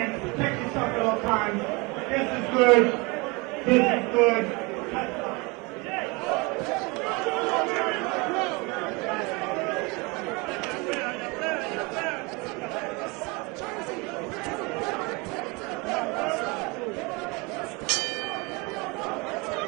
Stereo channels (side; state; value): left; quieter; 27.3 dB